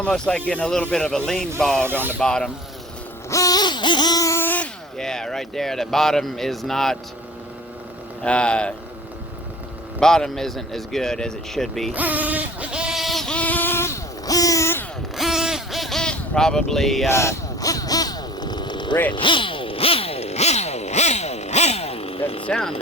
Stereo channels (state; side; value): normal; both; correlation 0.43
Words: like getting a little bit of a lean bog on the bottom. Yeah, right there. The bottom is not, bottom isn't as good as it should be. Probably rich. Doesn't sound